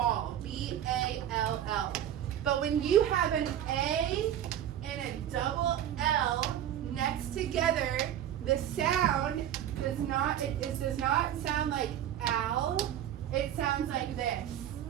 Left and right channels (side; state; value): left; quieter; 10.9 dB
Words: B-A-L-L. But when you have an A and a double L next together, the sound does not, it does not sound like owl, it sounds like this.